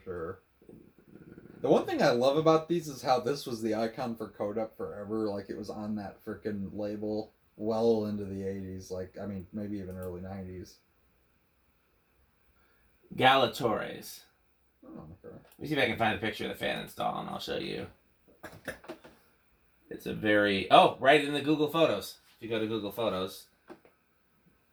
sure. The one thing I love about these is how this was the icon for Codep forever. Like, it was on that freaking label well into the 80s. Like, I mean, maybe even early 90s. Galatores. Oh, okay. Let me see if I can find a picture of the fan install, and I'll show you. It's a very... Oh, right in the Google Photos. If you go to Google Photos.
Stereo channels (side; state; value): both; identical; correlation 1.00